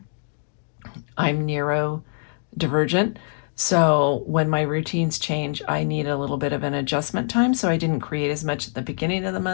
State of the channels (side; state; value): right; silent; digital silence